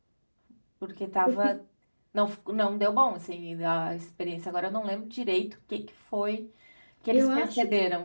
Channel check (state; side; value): inverted; both; correlation -1.00